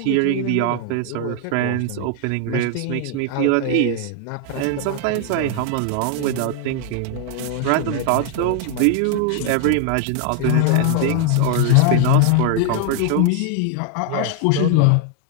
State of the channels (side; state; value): both; different; correlation 0.00